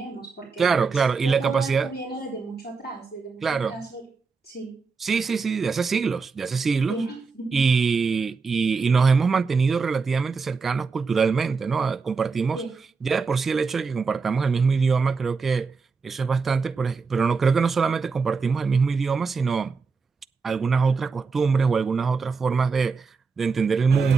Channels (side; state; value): left; quieter; 4.9 dB